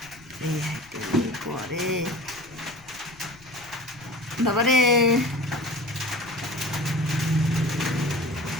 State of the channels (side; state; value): left; noise; rumble, 25 dB below the sound